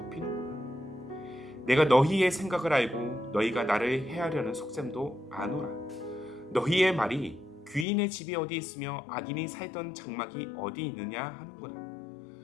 내가 너희의 생각을 알고 너희가 나를 해하려는 속셈도 아노라. 너희의 말이 귀인의 집이 어디 있으며 악인이 살던 장막이 어디 있느냐 하는구나.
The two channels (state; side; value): drops out; right; at 7.9 s